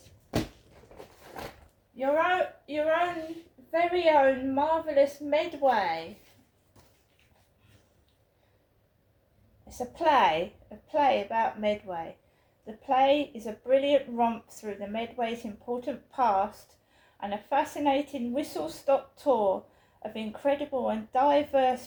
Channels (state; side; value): identical; both; correlation 1.00